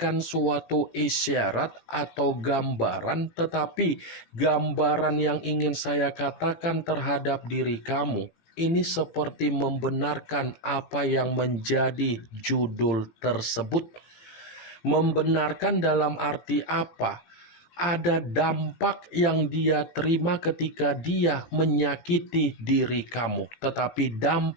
suatu isyarat atau gambaran, tetapi gambaran yang ingin saya katakan terhadap diri kamu ini seperti membenarkan apa yang menjadi judul tersebut. Membenarkan dalam arti apa? Ada dampak yang dia terima ketika dia menyakiti diri kamu. Tetapi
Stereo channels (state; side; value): late; right; 18 ms